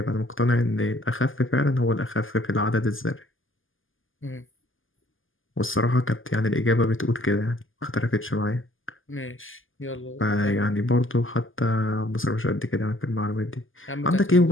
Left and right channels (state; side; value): late; right; 0.58 ms